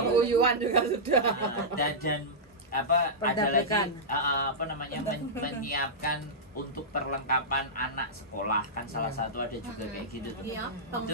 juga sudah. dan apa ada lagi Perdagangan. apa namanya menyiapkan untuk perlengkapan anak sekolah kan salah satu ada juga kayak gitu tuh. Iya.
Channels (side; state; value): both; normal; correlation -0.12